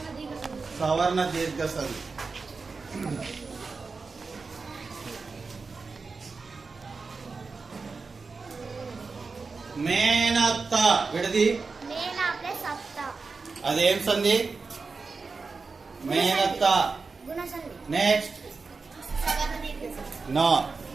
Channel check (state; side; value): quieter; left; 4.4 dB